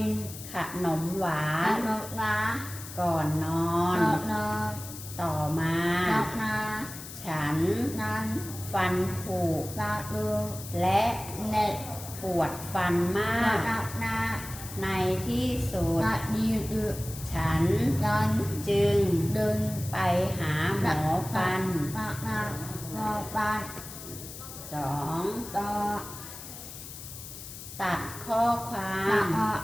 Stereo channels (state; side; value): noise; left; hiss, 12 dB below the sound